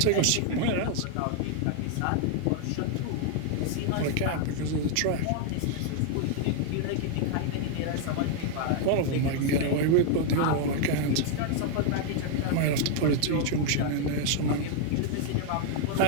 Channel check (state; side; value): different; both; correlation 0.00